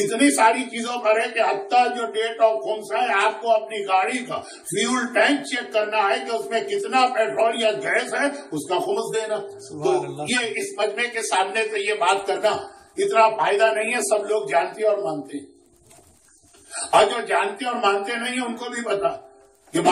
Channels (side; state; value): both; identical; correlation 1.00